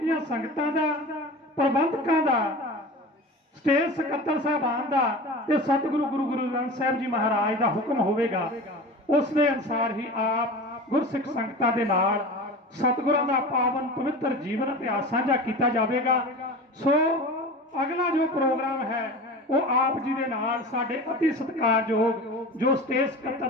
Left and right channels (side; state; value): both; normal; correlation 0.33